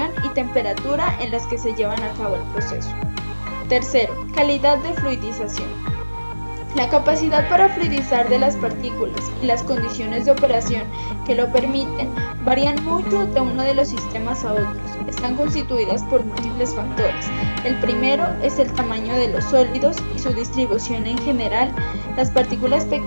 y temperatura en las que se llevan a cabo el proceso. Tercero, calidad de fluidización. La capacidad para fluidizar de las partículas y las condiciones de operación que lo permiten varían mucho de uno de los sistemas a otros. Están constituidas por múltiples factores. El primero es el tamaño de los sólidos y su distribución en general. Las partículas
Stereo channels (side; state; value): both; inverted; correlation -1.00